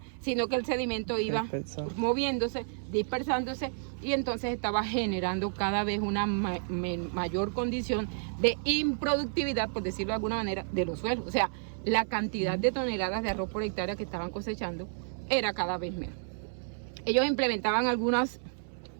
sino que el sedimento iba moviéndose, dispersándose, y entonces estaba generando cada vez una mayor condición de improductividad, por decirlo de alguna manera, de los suelos. O sea, la cantidad de toneladas de arroz por hectárea que estaban cosechando era cada vez menos. Ellos implementaban algunas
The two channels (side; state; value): left; silent; 57 dB below the other